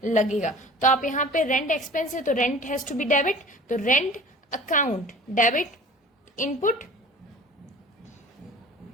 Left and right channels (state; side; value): normal; both; correlation 0.43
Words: लगेगा। तो आप यहाँ पे रेंट एक्सपेंस है तो rent has to be debit, तो rent account debit, input